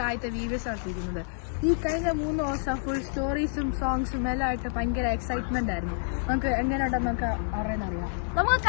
ആദ്യത്തെ വീഡിയോസ് നടത്തിയിരിക്കുന്നത്. ഈ കഴിഞ്ഞ 3 ദിവസം ഫുൾ സ്റ്റോറീസും സോങ്സും എല്ലാം ആയിട്ട് ഭയങ്കര എക്സൈറ്റ്മെന്റ് ആയിരുന്നു. നമുക്ക് എങ്ങനെയുണ്ടെന്ന് നമുക്ക് അറിയാം. നമുക്ക്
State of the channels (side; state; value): right; silent; 59 dB below the other